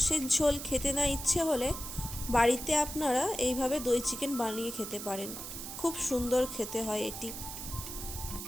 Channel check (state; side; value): noise; right; hiss, 8 dB below the sound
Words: ঝোল খেতে না ইচ্ছে হলে বাড়িতে আপনারা এইভাবে দই চিকেন বানিয়ে খেতে পারেন। খুব সুন্দর খেতে হয় এটি।